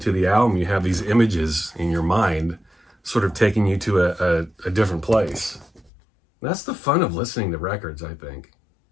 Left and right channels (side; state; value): right; drops out; at 5.9 s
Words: the album, you have these images in your mind sort of taking you to a different place. That's the fun of listening to records, I think,